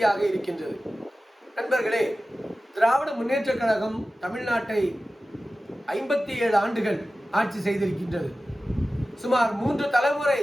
இருக்கின்றது. நண்பர்களே, திராவிட முன்னேற்றக் கழகம் தமிழ்நாட்டை 57 ஆண்டுகள் ஆட்சி செய்திருக்கின்றது. சுமார் 3 தலைமுறை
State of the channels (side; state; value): both; normal; correlation 0.95